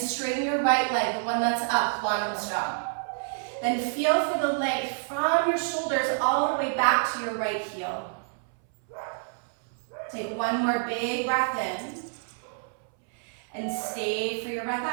your right leg, the one that's up, long and strong. Then feel for the length from your shoulders all the way back to your right heel. Take one more big breath in and stay for your breath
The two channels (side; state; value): left; silent; 59 dB below the other